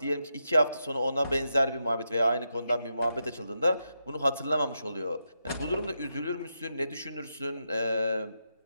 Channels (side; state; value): both; inverted; correlation -0.85